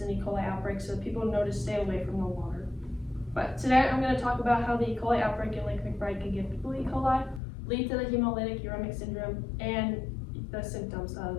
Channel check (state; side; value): drops out; right; at 7.4 s